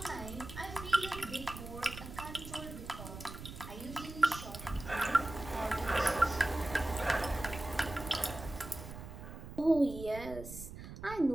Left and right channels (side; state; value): right; noise; rumble, 11 dB below the sound